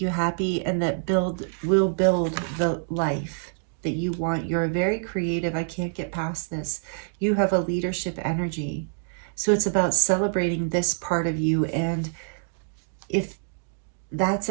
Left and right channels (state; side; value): silent; left; digital silence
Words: you happy and that will build the life that you want. You're very creative. I can't get past this. You have a leadership energy. So it's about celebrating this part of you. And if that's